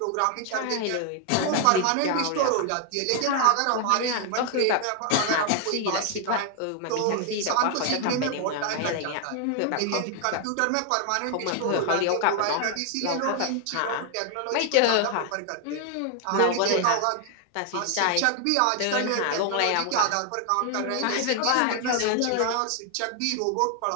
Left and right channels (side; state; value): both; different; correlation 0.00